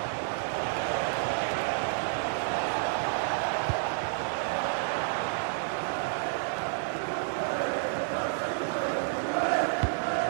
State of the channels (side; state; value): left; silent; digital silence